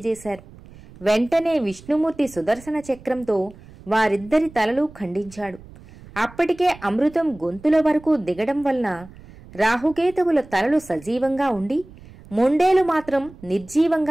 వెంటనే విష్ణుమూర్తి సుదర్శన చక్రంతో వారిద్దరి తలలు ఖండించాడు. అప్పటికే అమృతం గొంతుల వరకు దిగడం వలన రాహుకేతువుల తలలు సజీవంగా ఉండి మొండేలు మాత్రం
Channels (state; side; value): noise; right; rumble, 21 dB below the sound